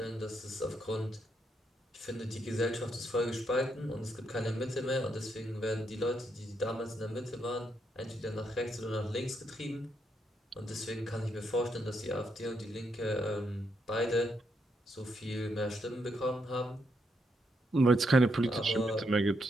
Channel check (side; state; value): both; normal; correlation 0.79